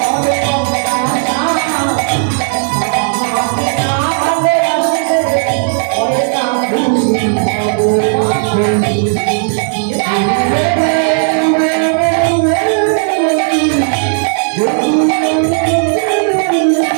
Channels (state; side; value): silent; left; digital silence